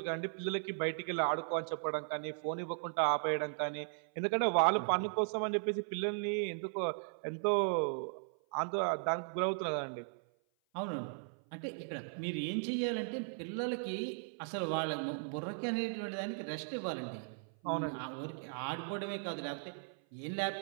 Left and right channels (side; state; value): left; silent; 53 dB below the other